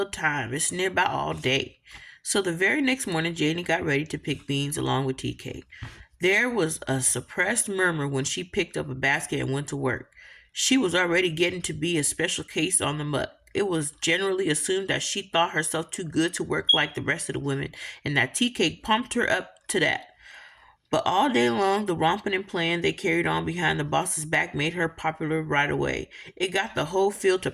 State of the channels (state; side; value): identical; both; correlation 1.00